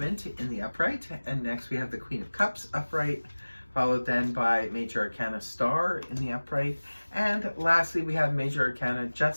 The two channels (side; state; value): both; inverted; correlation -1.00